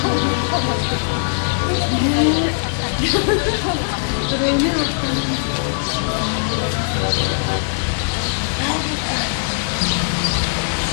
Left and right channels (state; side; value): silent; right; digital silence